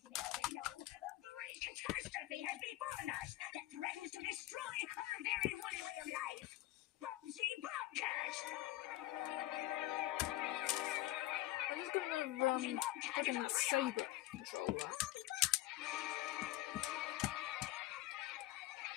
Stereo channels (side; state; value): right; quieter; 16.3 dB